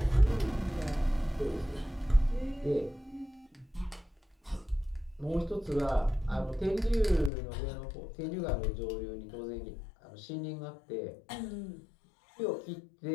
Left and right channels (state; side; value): drops out; right; at 7.3 s